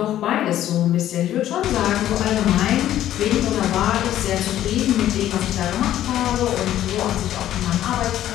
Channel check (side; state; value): right; quieter; 12.4 dB